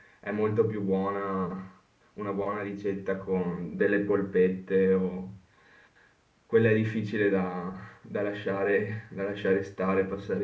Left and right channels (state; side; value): identical; both; correlation 1.00